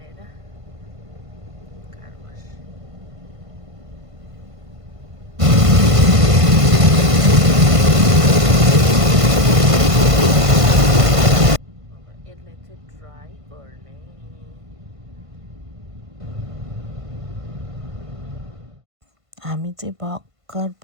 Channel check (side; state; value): left; late; 1.5 ms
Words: कार वास। यसलाई चाहिँ ड्राई गर्ने। हामी चाहिँ भर्खर